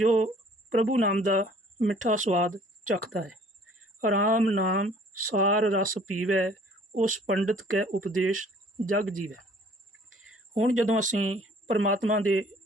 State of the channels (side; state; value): both; normal; correlation 0.55